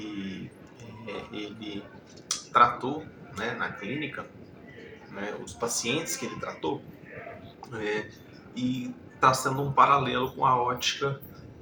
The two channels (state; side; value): identical; both; correlation 1.00